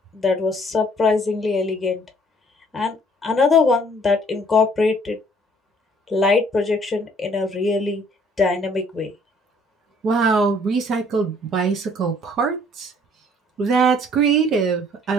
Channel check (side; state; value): both; normal; correlation 0.59